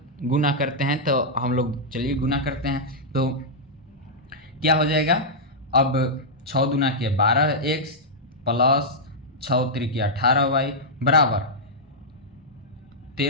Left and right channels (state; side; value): normal; both; correlation -0.09